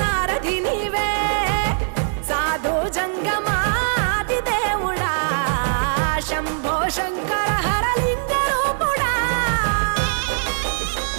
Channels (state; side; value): silent; left; digital silence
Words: నీవే, సాధు జంగమాది దేవుడా శంభో శంకర